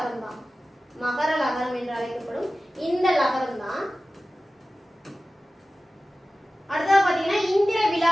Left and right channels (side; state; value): both; normal; correlation 0.95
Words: தான். மகர லகரம் என்று அழைக்கப்படும் இந்த லகரம் தான். அடுத்தது பாத்தீங்கன்னா இந்திர